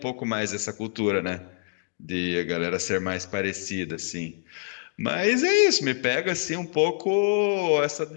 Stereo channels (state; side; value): silent; right; digital silence